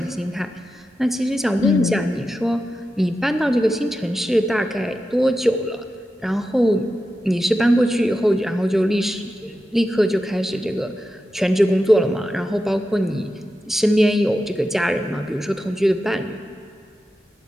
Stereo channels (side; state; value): both; normal; correlation 0.90